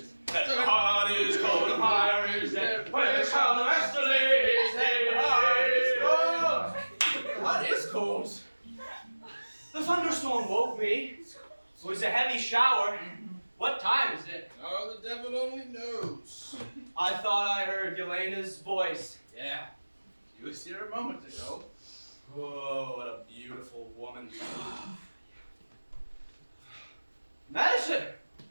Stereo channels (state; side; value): inverted; both; correlation -1.00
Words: head? The heart is cold, the fire is dead. Where shall the master lay his head? The heart is cold. The heart is cold. The thunderstorm woke me. It was a heavy shower. What time is it? Oh, the devil only knows. I thought I heard Yelena's voice. Yeah, she was here a moment ago. Oh, what a beautiful woman. Medicine,